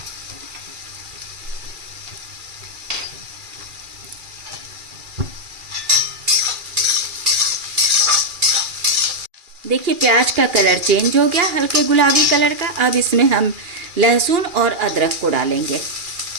देखिए प्याज का कलर चेंज हो गया, हल्के गुलाबी कलर का। अब इसमें हम लहसुन और अदरक को डालेंगे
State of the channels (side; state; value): left; late; 2.4 ms